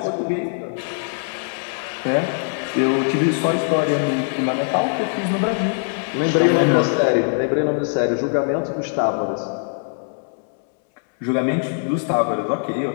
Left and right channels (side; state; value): right; silent; digital silence